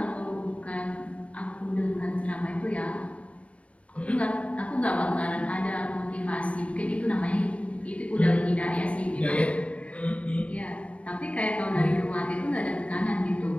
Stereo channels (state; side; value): late; right; 0.064 ms